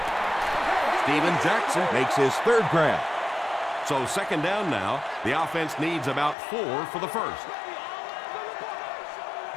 Steven Jackson makes his third grab. So second down now. The offense needs about 4 for the first.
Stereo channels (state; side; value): drops out; right; at 6.4 s